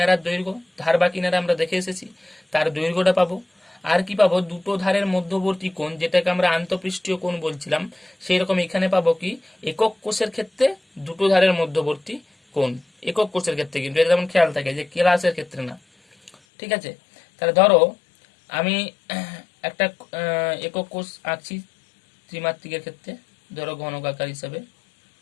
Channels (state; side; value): drops out; right; at 16.4 s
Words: দৈর্ঘ্য, ধার বা কিনারা আমরা দেখে এসেছি, তার দৈর্ঘ্যটা পাবো। আর কি পাবো, দুটো ধারের মধ্যবর্তী কোণ, যেটাকে আমরা আন্তঃপৃষ্ঠীয় কোণ বলছিলাম, সেই রকম এখানে পাবো কি একক কোষের ক্ষেত্রে দুটো ধারের মধ্যবর্তী কোণ, একক কোষের ক্ষেত্রে, কিন্তু এটা যেমন খেয়াল থাকে যে ক্লাসের ক্ষেত্রে না। ঠিক আছে? তাহলে ধরো আমি একটা একক কোষ আঁকছি ত্রিমাত্রিকের ক্ষেত্রে, ধরো ঘনকাকার হিসাবে।